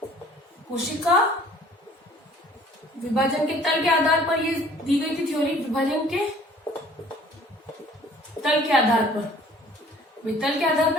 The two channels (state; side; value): normal; both; correlation 0.53